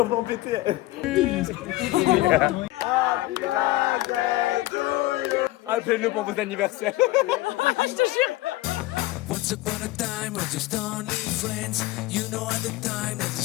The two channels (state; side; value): quieter; right; 18.1 dB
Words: péter. Appelez-nous pour vos anniversaires. Je te jure. Once upon a time, we're just only friends. You know at the time, there's the